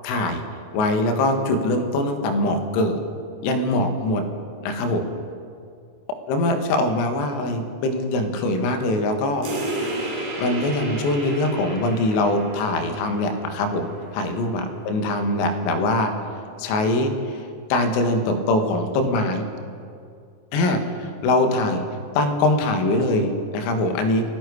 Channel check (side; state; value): right; late; 28 ms